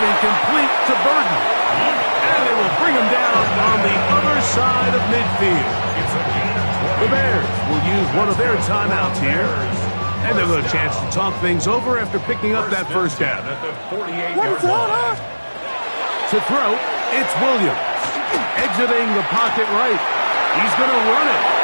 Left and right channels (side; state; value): both; inverted; correlation -1.00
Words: and complete to Burton. And they will bring him down on the other side of midfield. The Bears will use one of their timeouts here. And they'll get a chance to talk things over after picking up that first down. To throw, it's Williams. Exiting the pocket right. He's going to run it.